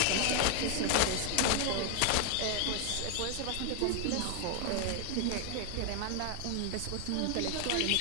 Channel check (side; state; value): both; different; correlation 0.00